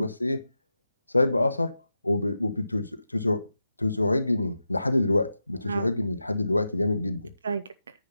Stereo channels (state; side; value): inverted; both; correlation -0.90